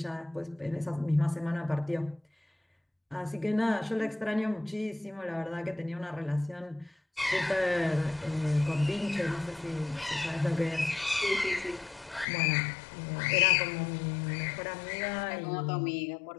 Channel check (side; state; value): right; drops out; at 12.2 s